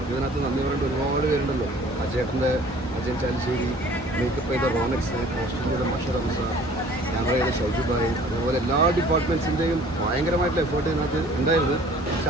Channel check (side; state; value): both; normal; correlation 0.51